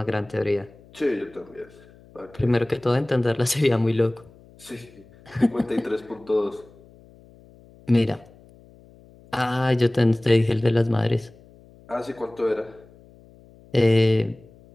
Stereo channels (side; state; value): left; noise; hum, 25 dB below the sound